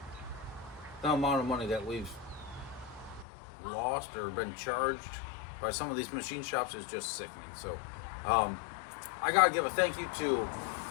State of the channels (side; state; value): right; drops out; at 3.2 s